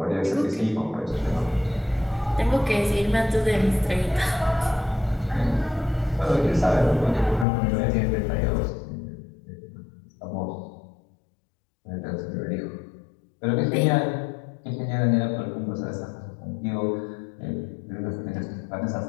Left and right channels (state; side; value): drops out; right; at 7.5 s